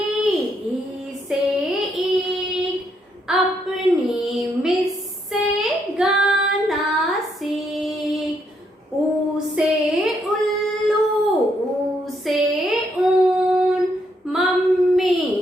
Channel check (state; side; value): normal; both; correlation 0.75